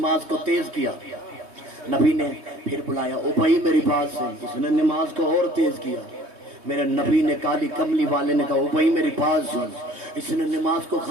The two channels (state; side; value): late; left; 3.2 ms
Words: کو تیز کیا, نبی نے پھر بلایا, ابی میری بات سن. اس نے نماز کو اور تیز کیا. میرے نبی نے کالی کملی والے نے کہا ابی میری بات سن. اس نے نماز کو